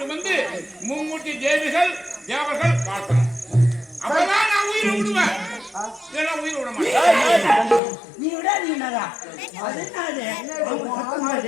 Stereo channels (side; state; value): right; drops out; at 7.8 s